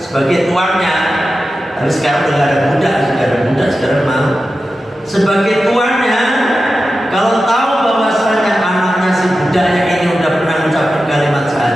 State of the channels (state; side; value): normal; both; correlation 0.92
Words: sebagai tuannya. Tapi sekarang udah ada budak, sekarang mau. Sebagai tuannya, kalau tahu bahwasanya anaknya si budaknya ini udah pernah mengucapkan kalimat